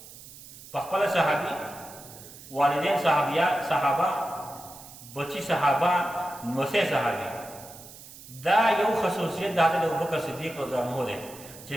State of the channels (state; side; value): noise; right; hiss, 17 dB below the sound